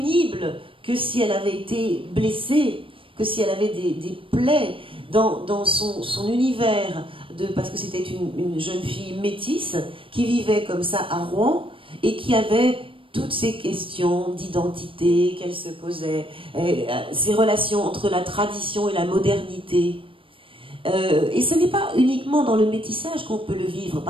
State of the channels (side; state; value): left; late; 0.25 ms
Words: que si elle avait été blessée, que si elle avait des plaies dans son univers. Parce que c'était une jeune fille métisse qui vivait comme ça à Rouen et qui avait toutes ces questions d'identité qu'elle se posait, ces relations entre la tradition et la modernité. Et ce n'est pas uniquement dans le métissage qu'on peut le vivre,